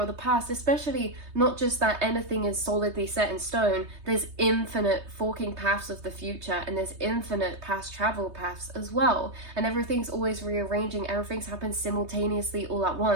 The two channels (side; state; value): left; late; 3.2 ms